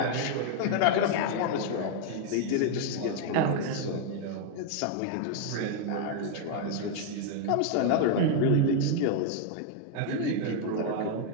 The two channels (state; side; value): different; both; correlation 0.00